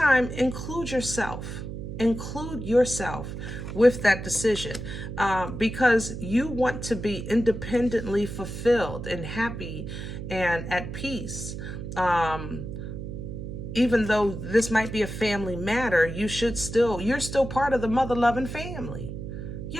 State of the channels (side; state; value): right; noise; hum, 7 dB below the sound